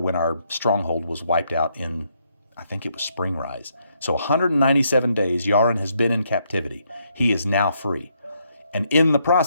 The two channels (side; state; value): both; inverted; correlation -0.75